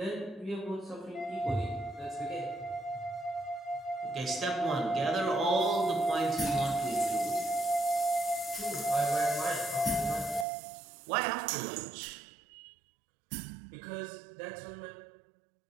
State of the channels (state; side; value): drops out; left; at 10.5 s